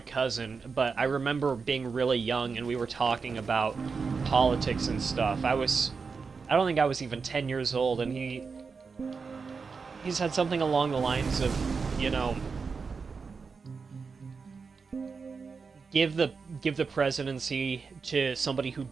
cousin, but I remember being really young and we were talking about politics and stuff. I don't think I was even 10 years old, and he said something along the lines of, you know, give the presidency to somebody who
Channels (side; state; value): left; quieter; 5.0 dB